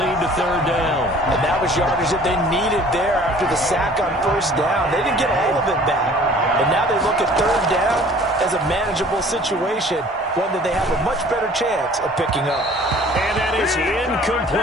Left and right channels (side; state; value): both; normal; correlation 0.50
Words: to third down. And that was yardage that they needed there after the sack on first down. They didn't get all of it back. And now they look at third down as a manageable situation, one that they have a much better chance of picking up. And that is